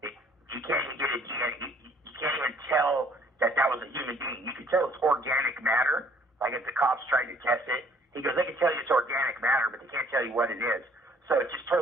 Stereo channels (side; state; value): both; normal; correlation 0.60